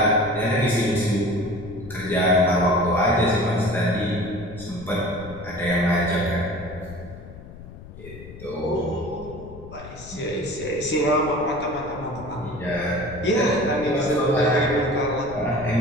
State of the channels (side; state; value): left; noise; rumble, 15 dB below the sound